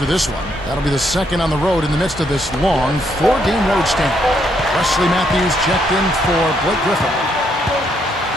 this one. That'll be the second on the road in the midst of this long 4-game road stand. Wesley Matthews checked in for Blake Griffin.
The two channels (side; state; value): both; normal; correlation 0.74